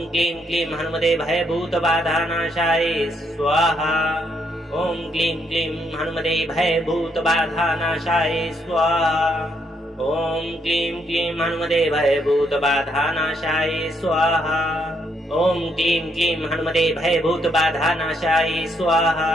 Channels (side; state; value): both; normal; correlation 0.74